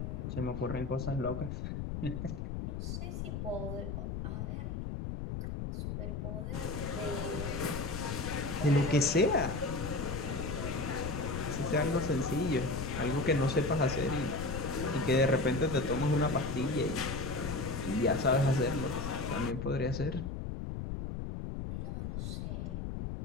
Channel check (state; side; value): noise; left; rumble, 4 dB below the sound